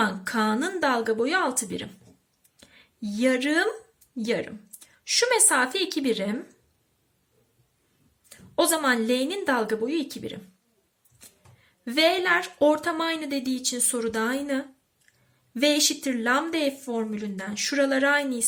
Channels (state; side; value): identical; both; correlation 1.00